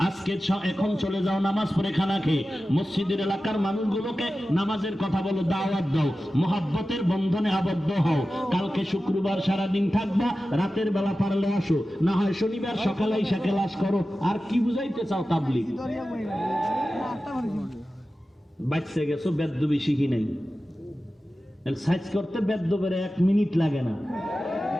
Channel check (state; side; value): normal; both; correlation 0.94